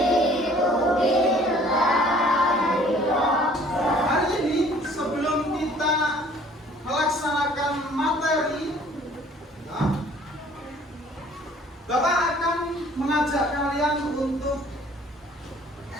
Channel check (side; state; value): both; normal; correlation 0.55